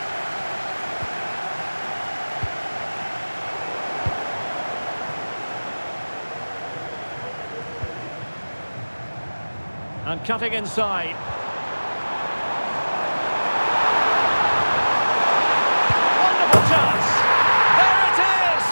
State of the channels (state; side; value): inverted; both; correlation -1.00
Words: And cutting inside. Wonderful chance. There it is!